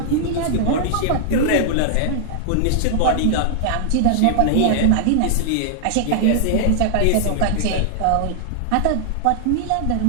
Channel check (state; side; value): different; both; correlation -0.01